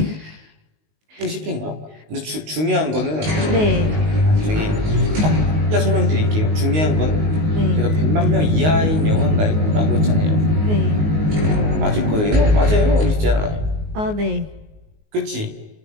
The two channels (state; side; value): late; left; 19 ms